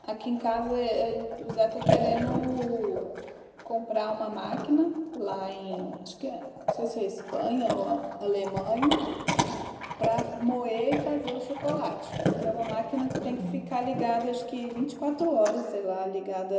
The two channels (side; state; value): both; identical; correlation 1.00